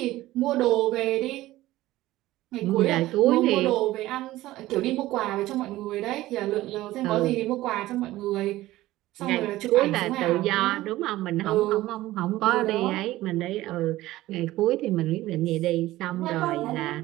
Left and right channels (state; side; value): quieter; left; 16.5 dB